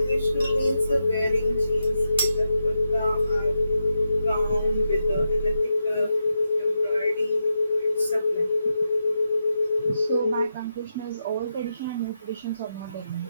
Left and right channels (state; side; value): inverted; both; correlation -0.86